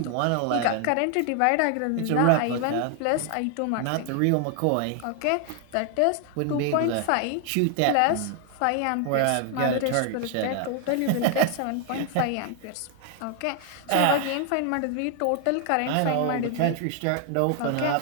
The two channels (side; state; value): both; different; correlation 0.00